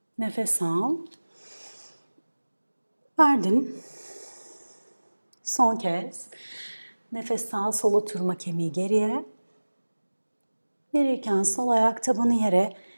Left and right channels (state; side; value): inverted; both; correlation -1.00